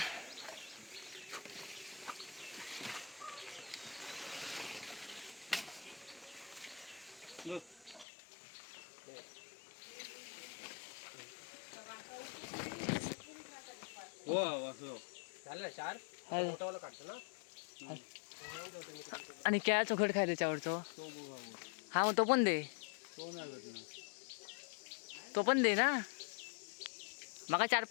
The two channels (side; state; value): right; drops out; at 8.1 s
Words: आणि क्या चोखट खाय त्याच्यावरचो. हा मग तो पण दे. तो पण दे ना. मग